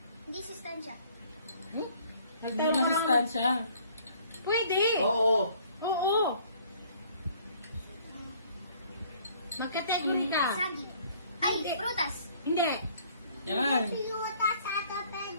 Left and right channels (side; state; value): both; inverted; correlation -0.58